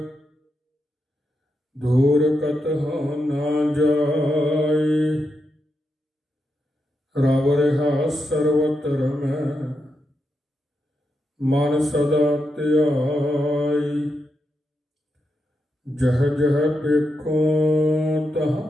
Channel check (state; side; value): normal; both; correlation 0.85